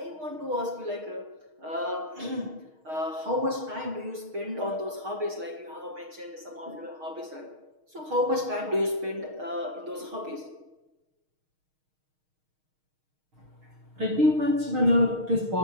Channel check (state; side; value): late; left; 6.4 ms